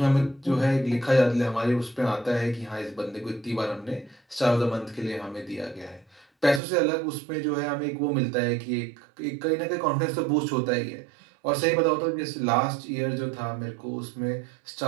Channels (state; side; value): drops out; left; at 6.6 s